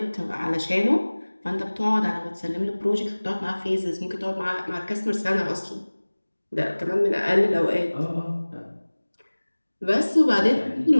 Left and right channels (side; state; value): both; inverted; correlation -1.00